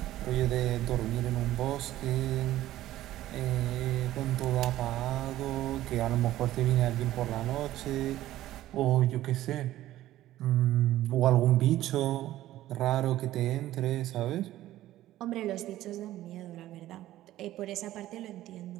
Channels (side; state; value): left; quieter; 14.5 dB